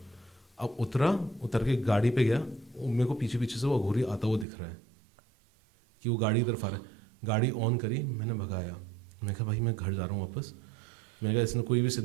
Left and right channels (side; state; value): left; drops out; at 4.5 s